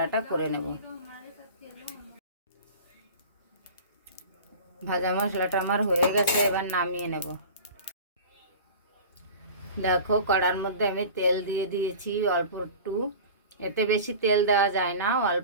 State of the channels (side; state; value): both; inverted; correlation -0.37